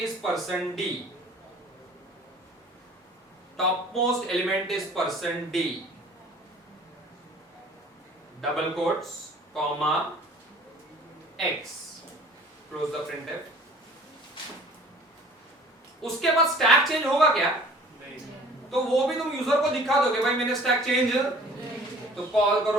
%d, topmost element is %d, double quotes comma x close the printf. उसके बाद स्टैक चेंज होगा क्या? तो वो भी तुम यूजर को दिखा दोगे भाई मैंने स्टैक चेंज, तो कॉल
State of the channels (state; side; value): normal; both; correlation 0.49